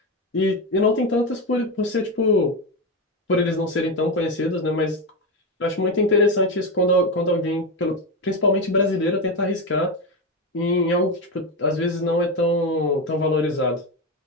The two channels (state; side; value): normal; both; correlation 0.14